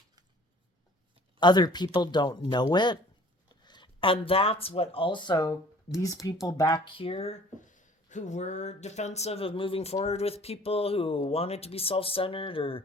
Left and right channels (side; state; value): both; normal; correlation 0.51